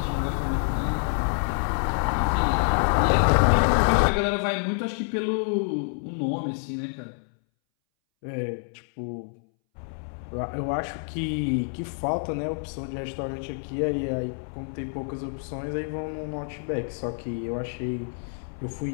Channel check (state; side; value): silent; right; 60 dB below the other